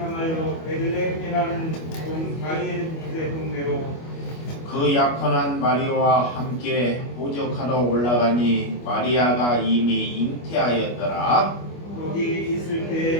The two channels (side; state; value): right; late; 25 ms